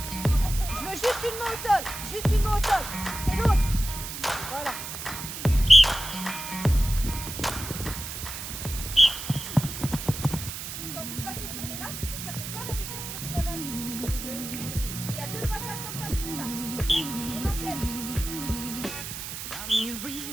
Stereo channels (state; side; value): noise; right; hiss, 7 dB below the sound